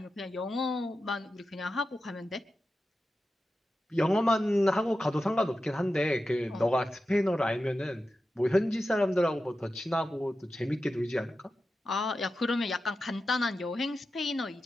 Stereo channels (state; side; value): normal; both; correlation 0.92